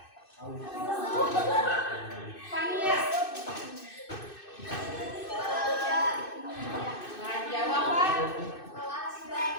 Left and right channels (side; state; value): right; late; 2.6 ms